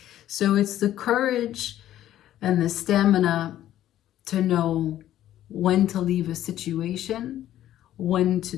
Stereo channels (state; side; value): quieter; right; 12.6 dB